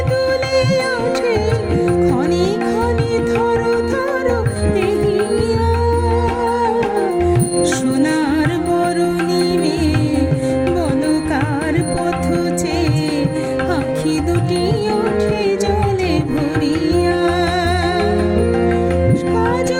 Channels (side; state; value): both; identical; correlation 1.00